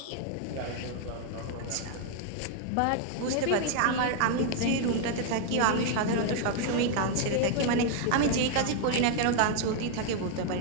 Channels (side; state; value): both; different; correlation 0.00